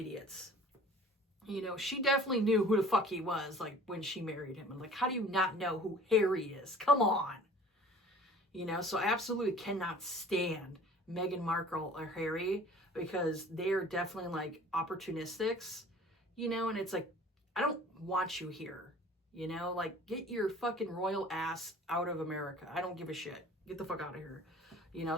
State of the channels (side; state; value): both; normal; correlation 0.47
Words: She definitely knew who the fuck he was, like, when she married him. And, like, how do you not know who Harry is? Come on. So I absolutely cannot stand Meghan Markle or Harry because they're definitely, like, opportunistics, and it's like, I don't want you here, like, get your fucking royal ass out of America. I don't give a shit. Get the fuck out of here.